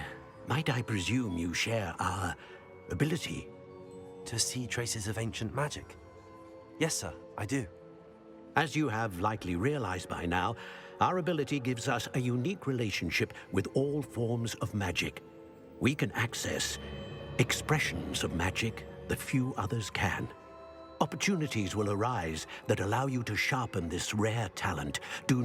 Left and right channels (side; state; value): both; identical; correlation 1.00